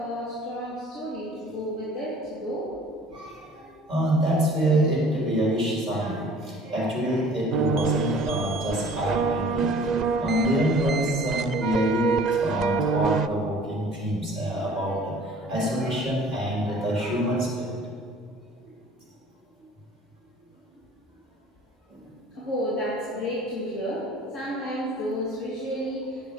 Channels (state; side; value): normal; both; correlation 0.49